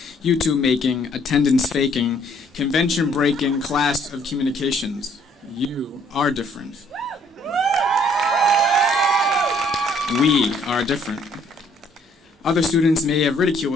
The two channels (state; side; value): normal; both; correlation 0.63